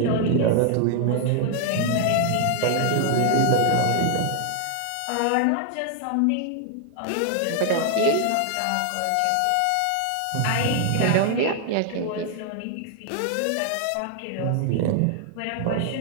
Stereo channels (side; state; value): both; different; correlation 0.00